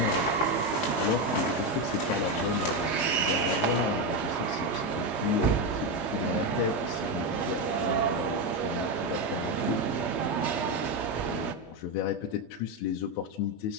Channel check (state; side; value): late; right; 19 ms